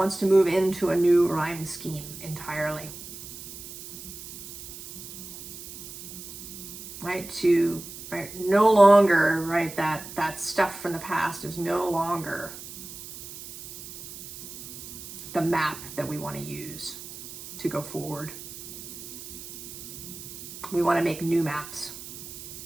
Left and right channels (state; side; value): noise; right; hiss, 13 dB below the sound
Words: to move into a new rhyme scheme entirely, right, no longer, right, that stuff from the past is no longer the map that we want to use to go forward. We want to make new maps.